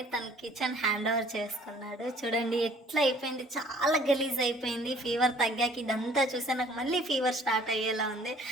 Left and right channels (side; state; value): both; normal; correlation 0.56